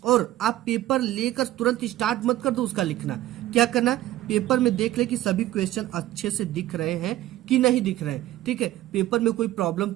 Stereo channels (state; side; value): quieter; left; 14.7 dB